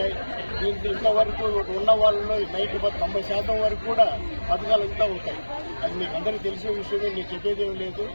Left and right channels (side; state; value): both; inverted; correlation -1.00